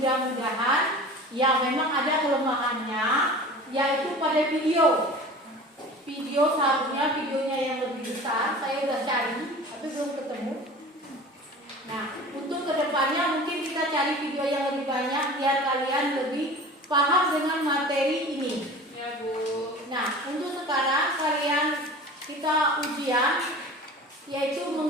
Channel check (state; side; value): normal; both; correlation 0.39